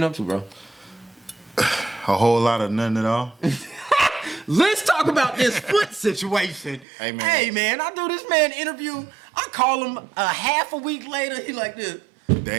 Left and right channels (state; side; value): drops out; left; at 6.9 s